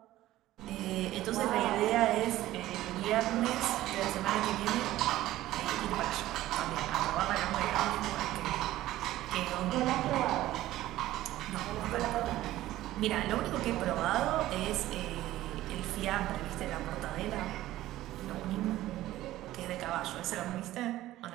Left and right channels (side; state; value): left; quieter; 15.2 dB